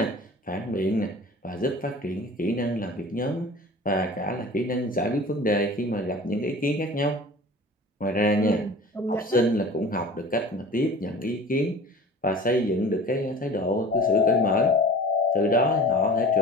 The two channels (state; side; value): normal; both; correlation 0.41